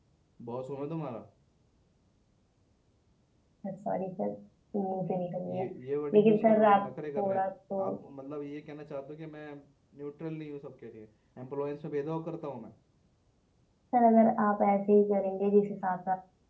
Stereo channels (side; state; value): both; identical; correlation 1.00